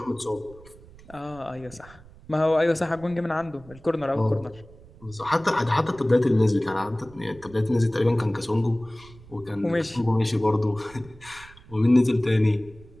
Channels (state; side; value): noise; right; rumble, 22 dB below the sound